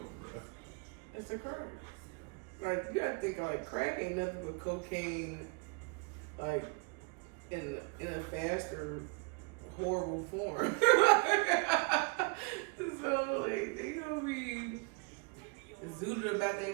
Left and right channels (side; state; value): left; quieter; 31.7 dB